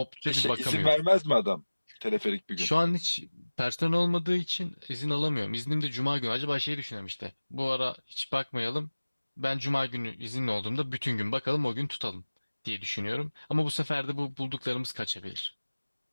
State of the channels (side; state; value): both; inverted; correlation -1.00